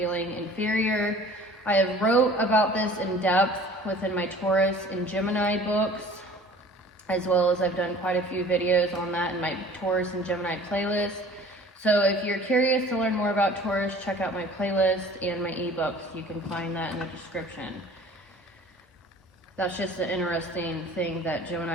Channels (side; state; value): both; normal; correlation 0.47